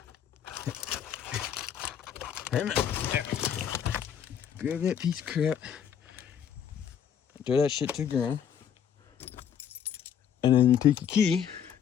grab that piece of crap, throw that shit to the ground, and then you take your key,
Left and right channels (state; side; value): quieter; right; 8.5 dB